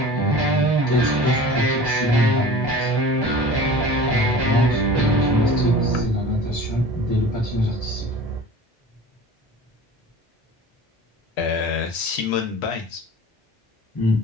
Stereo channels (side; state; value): both; normal; correlation 0.39